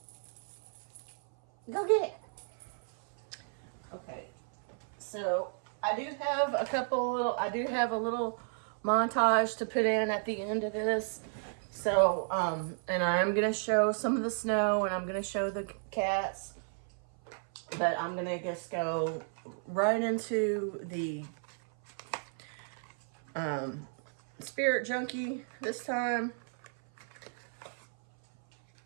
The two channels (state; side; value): silent; left; 55 dB below the other